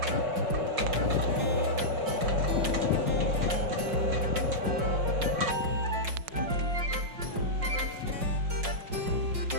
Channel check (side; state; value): left; late; 5.5 ms